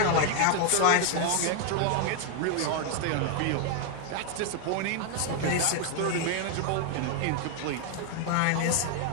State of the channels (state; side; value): different; both; correlation 0.00